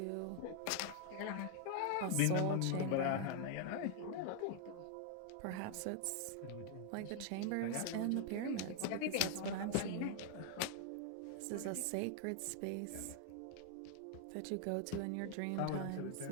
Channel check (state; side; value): different; both; correlation 0.00